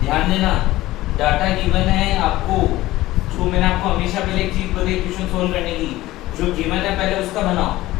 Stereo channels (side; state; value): right; quieter; 16.9 dB